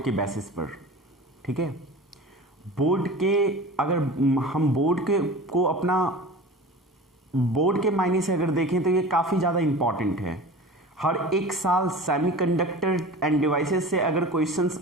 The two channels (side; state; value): both; normal; correlation 0.36